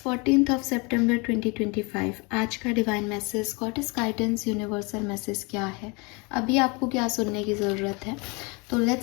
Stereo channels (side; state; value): right; quieter; 29.3 dB